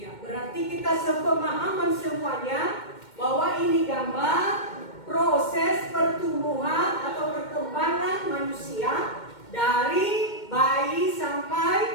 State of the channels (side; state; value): right; late; 2.2 ms